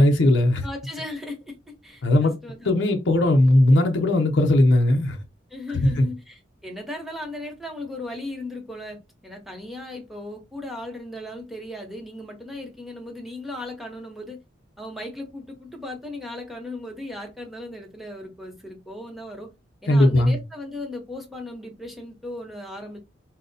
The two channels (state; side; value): normal; both; correlation 0.84